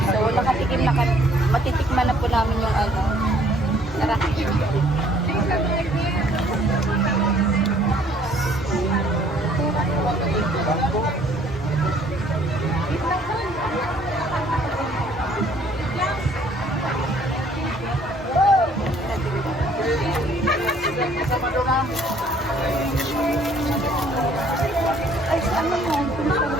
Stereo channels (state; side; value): normal; both; correlation 0.61